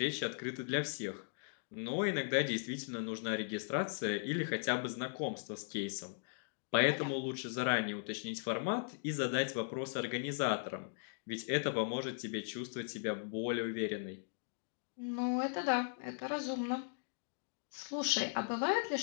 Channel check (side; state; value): right; silent; digital silence